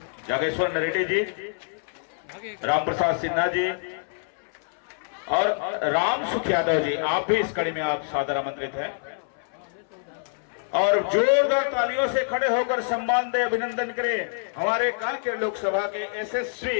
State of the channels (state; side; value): silent; right; 61 dB below the other